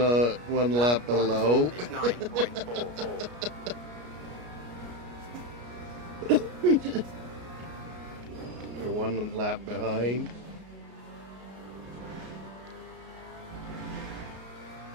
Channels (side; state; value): left; late; 33 ms